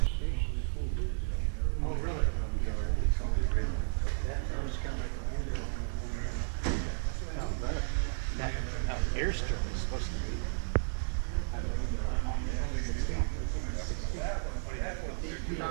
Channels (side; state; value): left; silent; digital silence